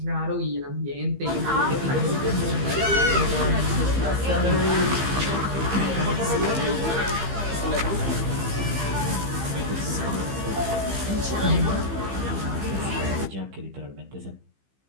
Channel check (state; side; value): late; left; 15 ms